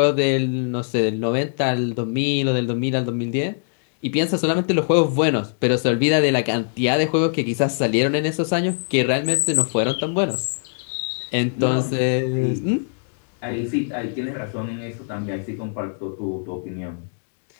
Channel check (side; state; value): right; silent; digital silence